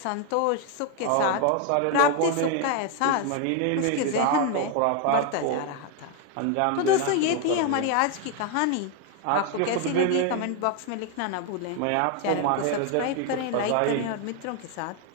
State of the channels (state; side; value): different; both; correlation 0.01